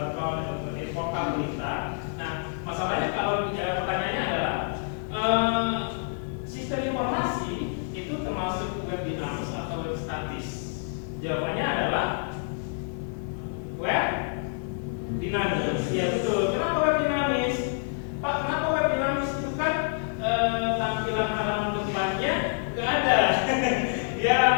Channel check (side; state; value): right; silent; digital silence